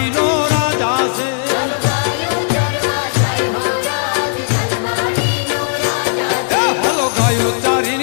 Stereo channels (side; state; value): right; silent; 69 dB below the other